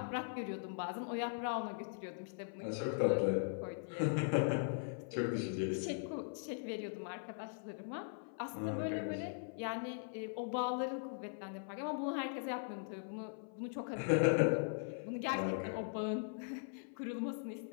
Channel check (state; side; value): silent; right; 51 dB below the other